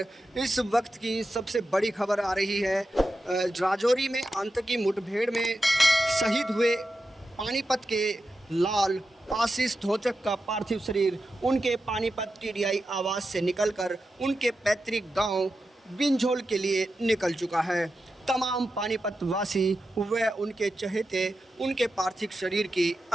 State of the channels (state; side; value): normal; both; correlation 0.90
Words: इस वक्त की सबसे बड़ी खबर आ रही है। राजौरी में आतंकी मुठभेड़ में शहीद हुए पानीपत के लाल आशीष धोचक का पार्थिव शरीर उनके पानीपत टीडीआई आवास से निकलकर उनके पैतृक गांव बिंझोल के लिए निकल चुका है। तमाम पानीपत वासी व उनके चहेते उनके पार्थिव शरीर की